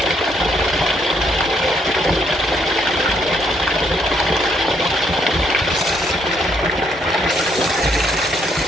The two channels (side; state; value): both; normal; correlation 0.71